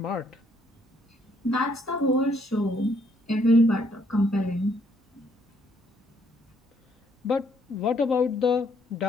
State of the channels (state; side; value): normal; both; correlation 0.68